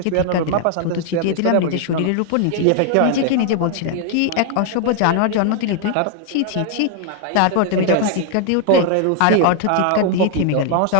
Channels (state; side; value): different; both; correlation 0.00